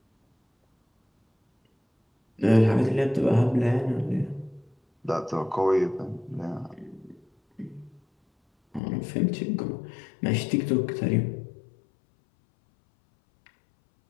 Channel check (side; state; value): right; drops out; at 8.8 s